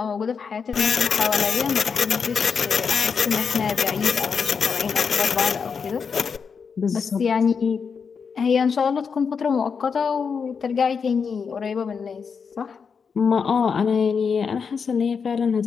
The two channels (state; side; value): quieter; right; 6.0 dB